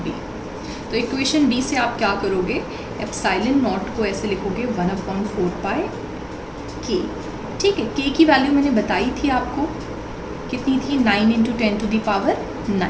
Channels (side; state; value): both; identical; correlation 1.00